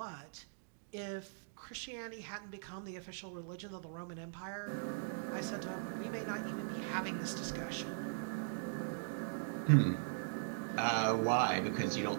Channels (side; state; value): left; silent; digital silence